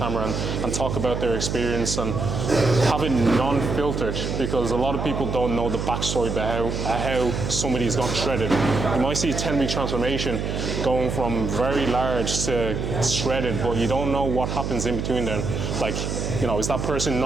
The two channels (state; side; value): noise; right; hum, 3 dB below the sound